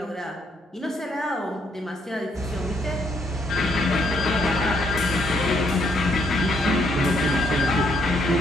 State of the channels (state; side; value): normal; both; correlation 0.72